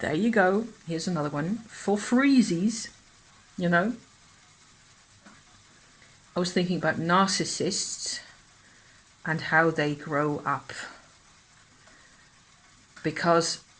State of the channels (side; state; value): both; identical; correlation 1.00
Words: you go. Here's another one for freezies. I was thinking about narcissists and how they grow up. Because